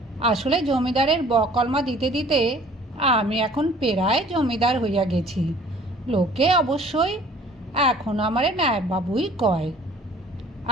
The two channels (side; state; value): both; normal; correlation 0.52